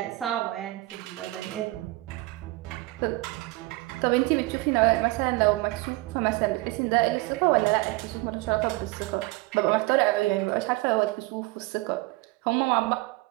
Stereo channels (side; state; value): left; quieter; 21.6 dB